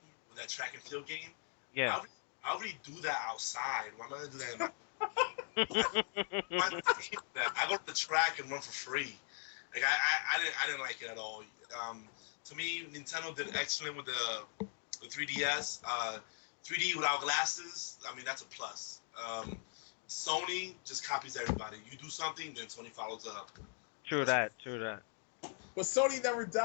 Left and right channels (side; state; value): right; silent; 51 dB below the other